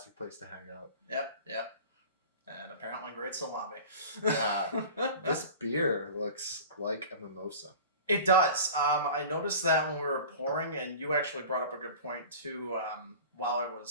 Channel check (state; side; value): inverted; both; correlation -0.39